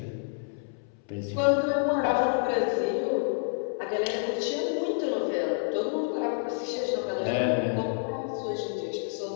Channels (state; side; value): silent; right; 59 dB below the other